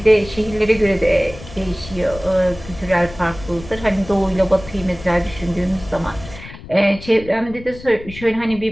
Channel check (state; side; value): noise; left; rumble, 16 dB below the sound